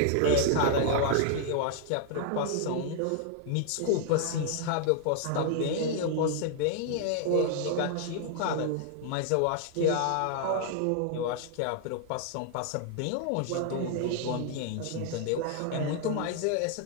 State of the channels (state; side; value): different; both; correlation 0.00